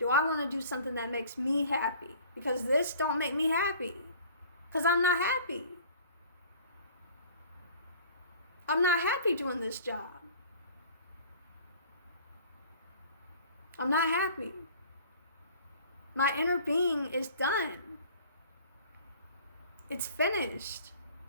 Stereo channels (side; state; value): both; inverted; correlation -0.48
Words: I want to do something that makes me happy? Because this don't make me happy. Because I'm not happy. I'm not happy doing this job. I'm not happy. My inner being is done. It's finished.